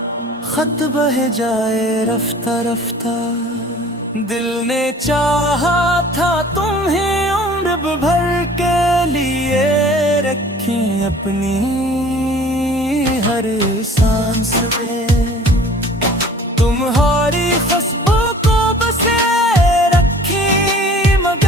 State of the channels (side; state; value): both; normal; correlation 0.48